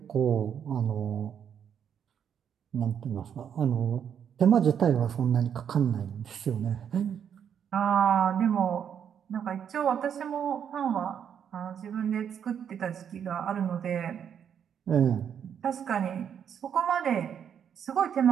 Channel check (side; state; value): left; quieter; 8.3 dB